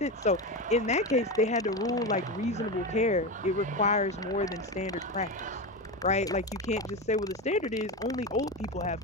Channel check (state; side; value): normal; both; correlation 0.18